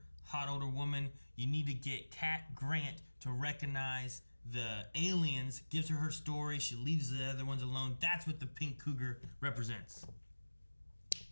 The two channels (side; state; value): both; inverted; correlation -1.00